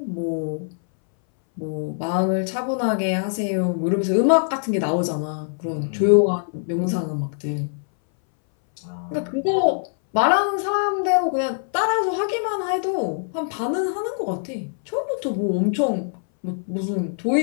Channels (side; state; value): right; silent; 61 dB below the other